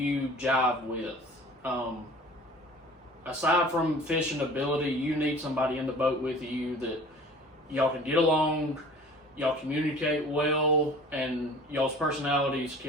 jive with. Aside from fishing ability, you need somebody in the boat with you that y'all can get along, y'all communicate well, and y'all's personalities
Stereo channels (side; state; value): both; normal; correlation 0.45